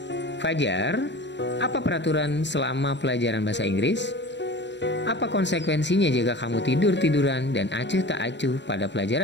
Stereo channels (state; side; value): late; right; 0.52 ms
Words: Fajar, apa peraturan selama pelajaran bahasa Inggris? Apa konsekuensinya jika kamu tidur-tiduran dan acuh tak acuh pada